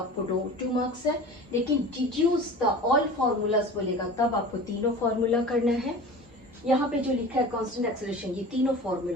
2 मार्क्स है। लेकिन डिड्यूस द ऑल फॉर्मूलाज बोलेगा, तब आपको तीनों फॉर्मूला करना है। यहाँ पे जो लिखा है कांस्टेंट एक्सेलरेशन, ये तीनों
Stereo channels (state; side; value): normal; both; correlation 0.37